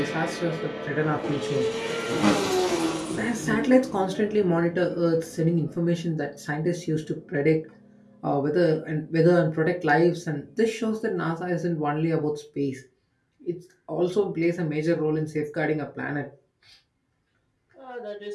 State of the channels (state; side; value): identical; both; correlation 1.00